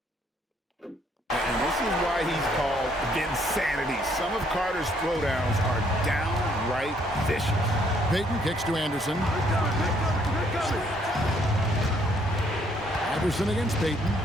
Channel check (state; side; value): normal; both; correlation 0.67